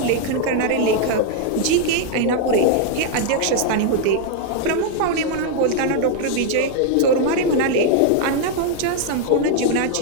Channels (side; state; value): both; different; correlation 0.00